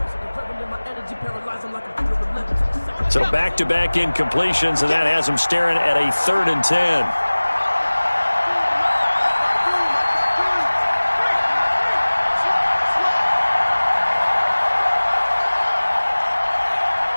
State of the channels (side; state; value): both; inverted; correlation -1.00